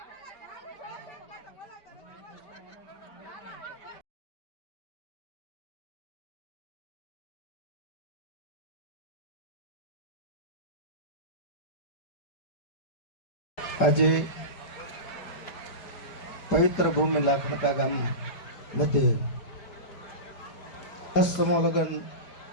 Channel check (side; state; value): right; late; 5.0 ms